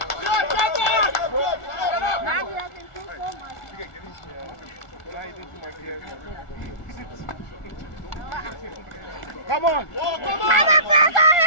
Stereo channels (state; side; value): late; right; 1.6 ms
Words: Come on! Press